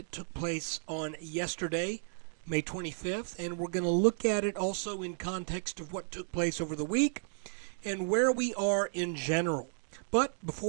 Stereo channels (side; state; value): left; silent; digital silence